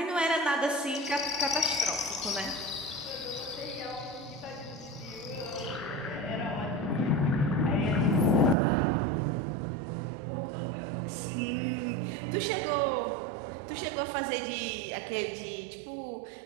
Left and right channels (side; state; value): left; drops out; at 8.6 s